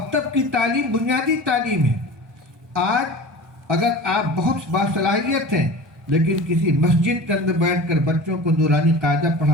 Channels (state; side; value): normal; both; correlation 0.36